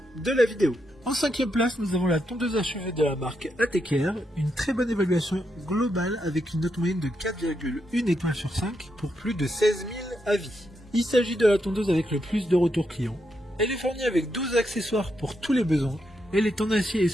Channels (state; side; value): normal; both; correlation 0.82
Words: de la vidéo. En 5e place, nous avons la tondeuse à cheveux de la marque ATKR, une très bonne évaluation globale avec une note moyenne de 4,1 étoiles sur 5 pour plus de 16 000 avis. Il s'agit de la tondeuse avec le plus de retours clients. Elle est fournie avec 12 accessoires pour tous les besoins. Elle est en acier et